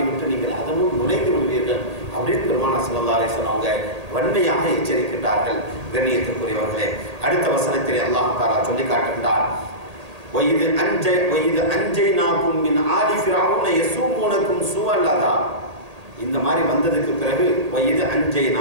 விட்டு நீங்கள் அதனும் நுழைந்து விடுவீர்கள் அப்படின்னு பெருமானார் ஸல்லல்லாஹு அலைஹி வஸல்லம் அவங்க வன்மையாக எச்சரிக்கின்றார்கள். கண்ணியத்திற்குரியவர்களே, அடுத்த வசனத்தில் அல்லாஹ் தஆலா சொல்லி காட்டுகின்றார், வயிது அன்ஜைனாகும் மின் ஆலி ஃபிரௌன யஸூமுனகும் ஸூஅல் அஸாப். இந்த மாதிரி வந்ததுக்கு பிறகு வயிது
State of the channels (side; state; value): left; late; 1.8 ms